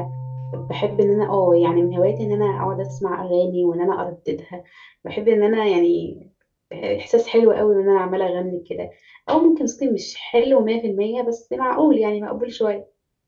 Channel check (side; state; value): both; identical; correlation 1.00